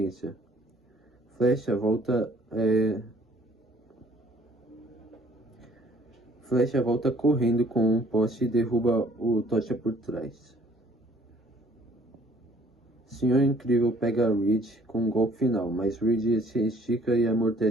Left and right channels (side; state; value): both; normal; correlation 0.58